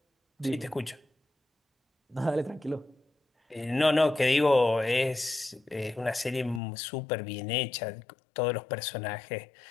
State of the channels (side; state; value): right; drops out; at 6.6 s